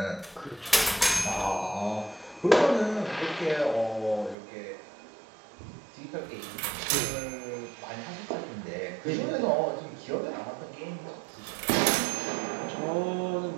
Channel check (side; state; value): left; drops out; at 4.4 s